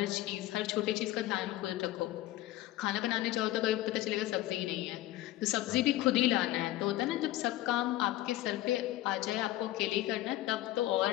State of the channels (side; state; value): right; quieter; 15.7 dB